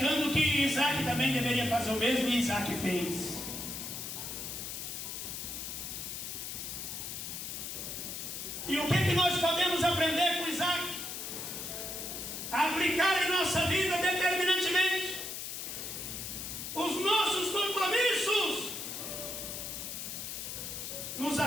que Isaac também deveria fazer o mesmo, e Isaac fez. E o que nós podemos aprender com Isaac? Aplicar em nossa vida determinantemente os nossos compromissos nos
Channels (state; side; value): noise; left; hiss, 6 dB below the sound